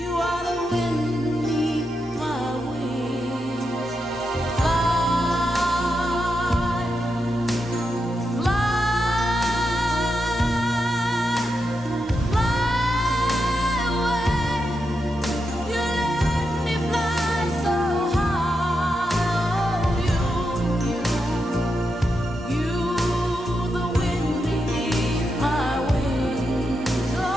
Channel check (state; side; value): normal; both; correlation 0.85